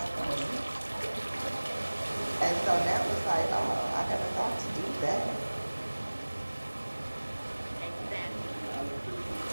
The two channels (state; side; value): inverted; both; correlation -1.00